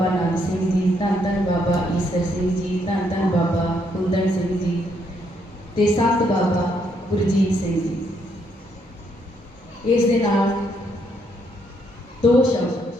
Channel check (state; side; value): normal; both; correlation 0.73